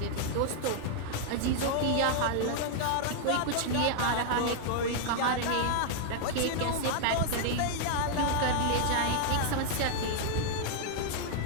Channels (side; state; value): both; different; correlation -0.01